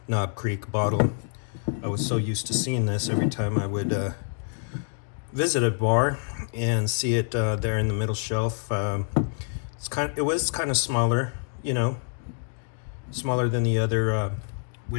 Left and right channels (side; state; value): right; silent; 60 dB below the other